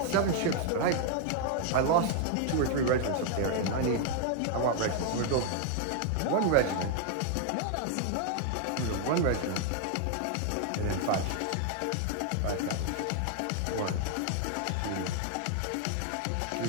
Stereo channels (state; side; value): different; both; correlation 0.00